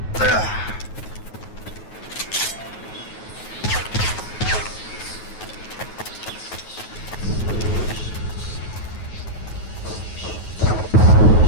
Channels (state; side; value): late; right; 9.3 ms